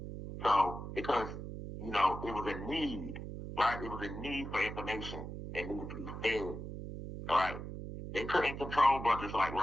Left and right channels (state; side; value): noise; right; hum, 8 dB below the sound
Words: So because it was a need, right? It was a need for information that needed to be fed. All right. They couldn't control brothers like